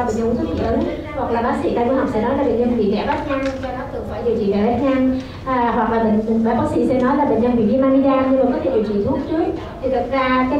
bệnh nhân uống thuốc dị ứng, hoặc là bác sĩ tai mũi họng sẽ nói là bệnh nhân bị rẽ vách nhăn, cho nó cần phải điều trị rẽ vách nhăn, hoặc là bác sĩ sẽ nói là bệnh nhân bị viêm amidan nhưng mà có thể điều trị thuốc trước. Thì thực ra cái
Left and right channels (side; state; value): both; identical; correlation 1.00